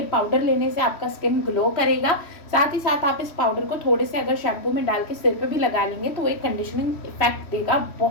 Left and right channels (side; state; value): right; late; 3.1 ms